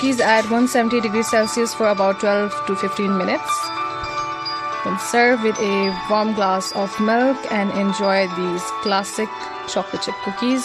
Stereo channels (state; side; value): identical; both; correlation 1.00